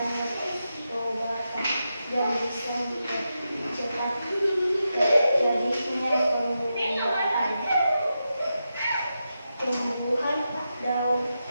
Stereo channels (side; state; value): both; inverted; correlation -0.88